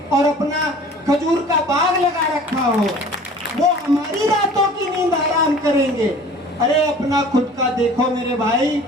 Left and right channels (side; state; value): both; normal; correlation 0.46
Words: और अपना खजूर का बाग लगा रखा हो, वो हमारी रातों की नींद आराम करेंगे। अरे अपना खुद का देखो मेरे भाई,